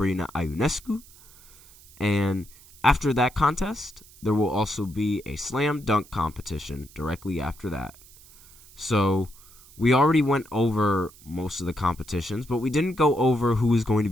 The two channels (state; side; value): noise; right; hiss, 23 dB below the sound